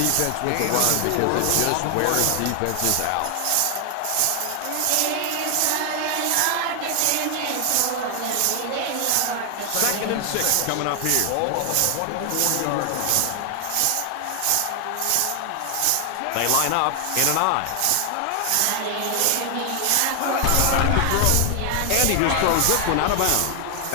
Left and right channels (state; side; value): different; both; correlation 0.00